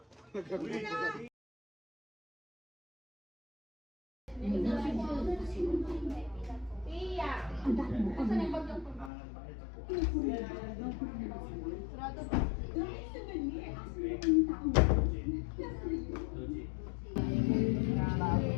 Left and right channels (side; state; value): right; drops out; at 9.1 s